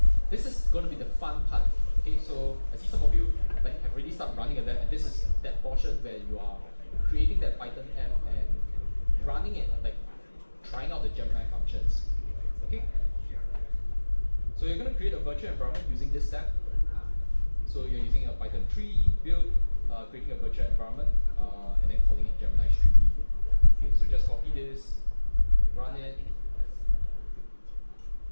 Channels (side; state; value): both; inverted; correlation -1.00